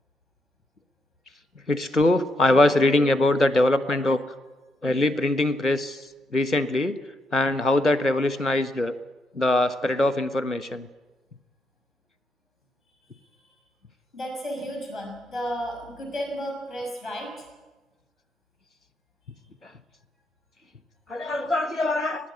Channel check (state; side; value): normal; both; correlation 0.79